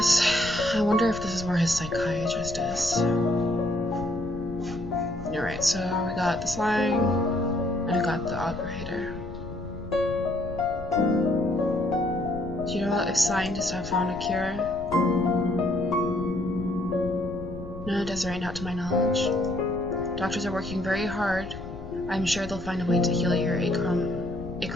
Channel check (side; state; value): left; noise; rumble, 12 dB below the sound